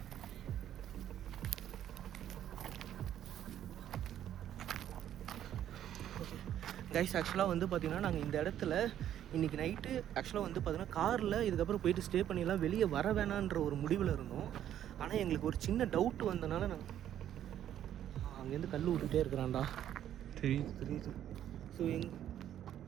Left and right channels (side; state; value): left; quieter; 10.9 dB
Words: கைஸ் ஆக்சுவலாக வந்து பார்த்தீங்கன்னா நாங்கள் இந்த இடத்துல இன்றைக்கி நைட்டு ஆக்சுவலாக வந்து பார்த்தீங்கன்னா காரில் இதுக்கப்புறம் போயிட்டு ஸ்டே பண்ணிடலாம், வெளியே வர வேணான்ற ஒரு முடிவில் இருந்தோம். ஆனால் எங்களுக்கு ஒரு சின்ன டவுட் வந்தனால நாங்கள் அங்கேருந்து கல் விட்டுட்டே இருக்கிறான்டா. தெரியுது தெரியுது. ஸோ